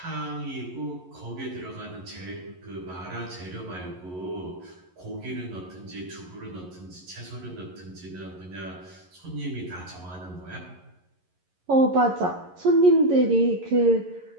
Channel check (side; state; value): left; late; 11 ms